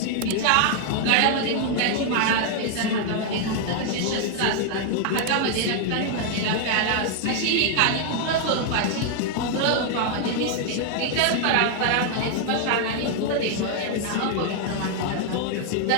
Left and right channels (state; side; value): different; both; correlation 0.00